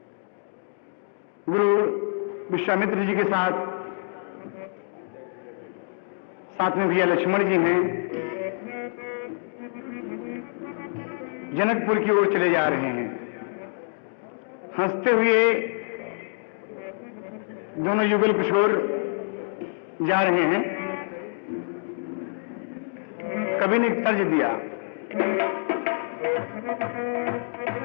गुरु विश्वामित्र जी के साथ में भैया लक्ष्मण जी हैं, जनकपुर की ओर चले जा रहे हैं। हंसते हुए दोनों युगल किशोर जा रहे हैं। कवि ने एक तर्ज दिया,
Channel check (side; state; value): right; silent; digital silence